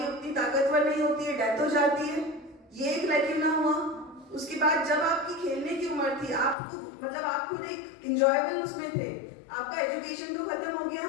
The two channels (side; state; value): right; drops out; at 6.6 s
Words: उतनी ताकतवर नहीं होती है, डेथ हो जाती है। ये एक लैक्यूना हुआ। उसके बाद जब आपकी खेलने की उम्र थी, आपको मतलब आप खुद एक इंजॉयबल उसमें थे, आपका एजुकेशन तो खत्म हो गया,